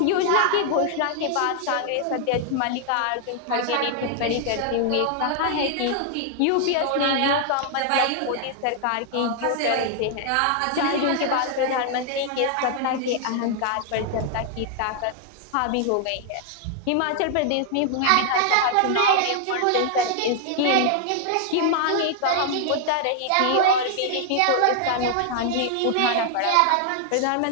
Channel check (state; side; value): different; both; correlation 0.00